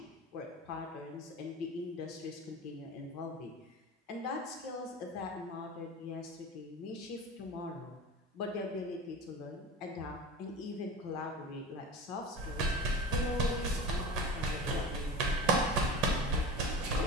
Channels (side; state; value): both; normal; correlation 0.30